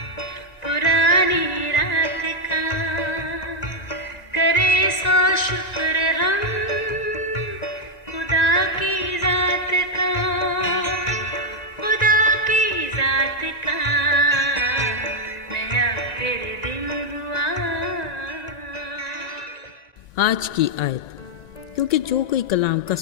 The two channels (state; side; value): late; right; 1.9 ms